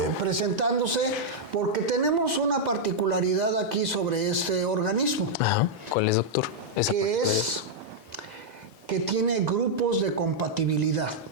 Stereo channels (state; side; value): normal; both; correlation -0.05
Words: presentándose porque tenemos una particularidad aquí sobre este organismo, Ajá. ¿Cuál es, doctor? Esa que parte es que tiene grupos de compatibilidad.